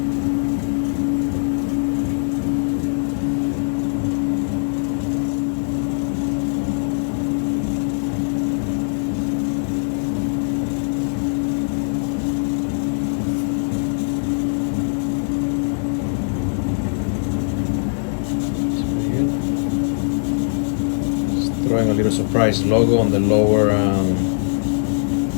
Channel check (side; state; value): right; silent; digital silence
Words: Throwing a little surprise logo on the lower